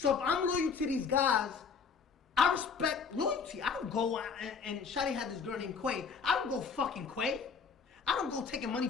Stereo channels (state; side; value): quieter; right; 5.7 dB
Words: if I'm loyal to these guys, I respect loyalty. I don't go and Shadi had this girl named Quay. I don't go fucking Quay. I don't go taking money